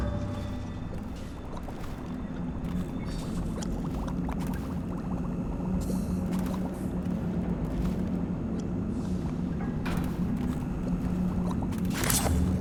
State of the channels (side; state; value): both; identical; correlation 1.00